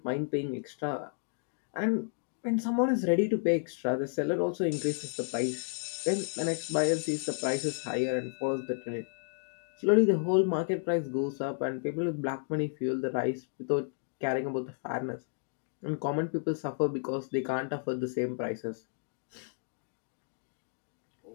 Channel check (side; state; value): right; silent; digital silence